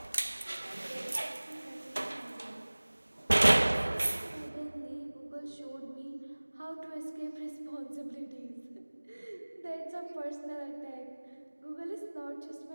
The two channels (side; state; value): both; inverted; correlation -1.00